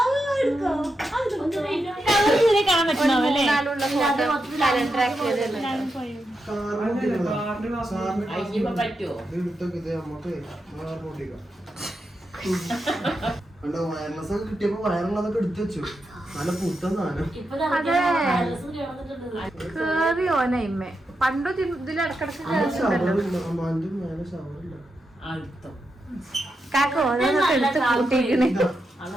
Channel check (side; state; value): both; normal; correlation 0.86